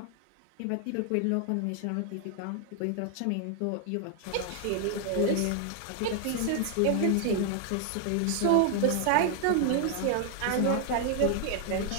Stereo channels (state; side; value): different; both; correlation 0.00